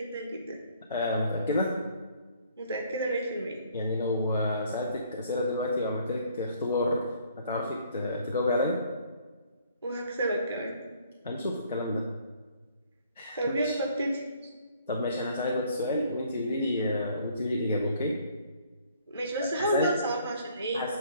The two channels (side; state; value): both; inverted; correlation -0.61